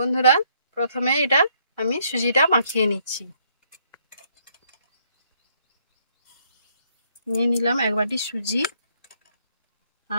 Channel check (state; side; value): inverted; both; correlation -0.70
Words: প্রথমে এটা আমি সুজিটা মাখিয়ে নিচ্ছি। নিয়ে নিলাম এক বাটি সুজি